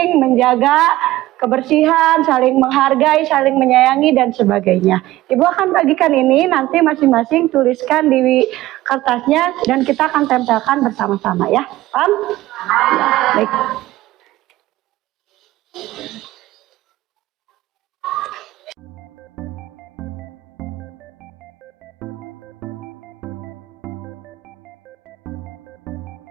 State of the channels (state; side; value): quieter; left; 16.6 dB